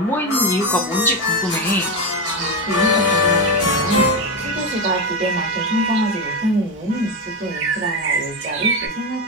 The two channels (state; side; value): normal; both; correlation 0.13